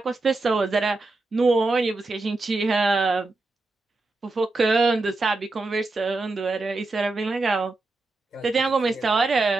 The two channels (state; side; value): quieter; left; 3.3 dB